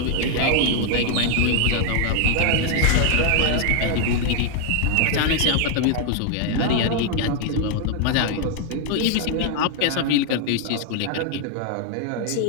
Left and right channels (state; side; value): different; both; correlation 0.00